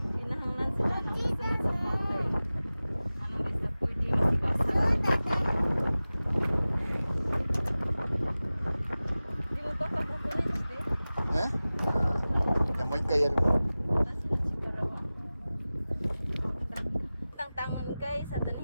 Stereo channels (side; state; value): both; inverted; correlation -0.97